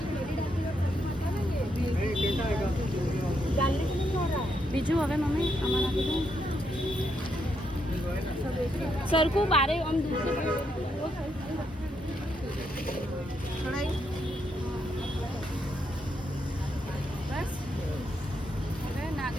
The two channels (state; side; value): normal; both; correlation 0.79